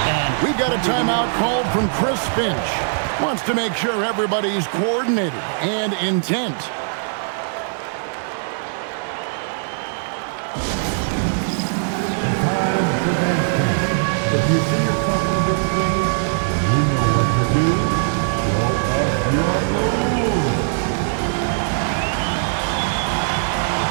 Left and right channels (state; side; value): silent; left; digital silence